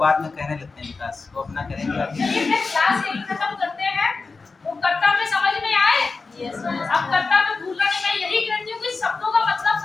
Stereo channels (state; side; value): quieter; right; 4.2 dB